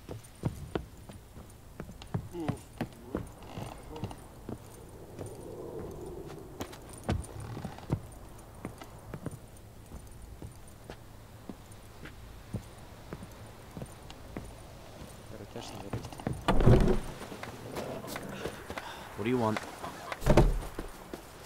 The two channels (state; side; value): identical; both; correlation 1.00